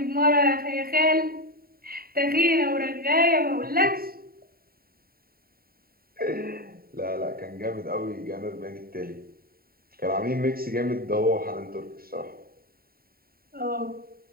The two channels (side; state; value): left; late; 0.43 ms